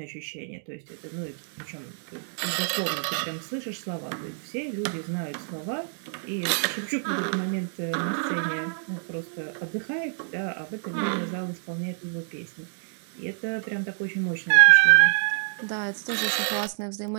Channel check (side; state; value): left; silent; digital silence